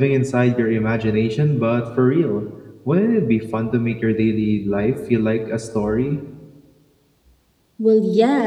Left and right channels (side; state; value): both; identical; correlation 1.00